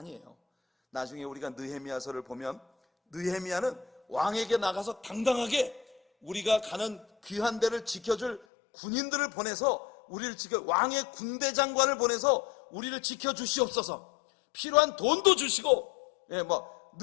나중에 우리가 느헤미야서를 보면 느헤미야는 왕에게 나가서 당당하게 우리가 가는 귀한 데를 지켜줄 군인들을 보내서 우리를 지켜, 왕의 군대 장관을 보내서 우리를 지켜주시옵소서, 필요한 돈도 주시고,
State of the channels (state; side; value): drops out; right; at 8.4 s